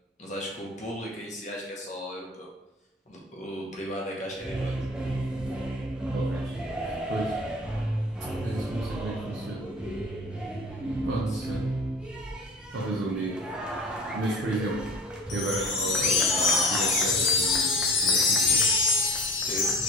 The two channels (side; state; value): both; normal; correlation 0.40